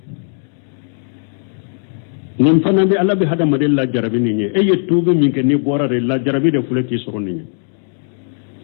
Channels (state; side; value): silent; right; digital silence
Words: nin fana bɛ ala bɛ hadamaden lajarabi nin ye e ye tuubi min kɛ ni bɔra de lajarabi de filɛ k'i sɔrɔ nin ye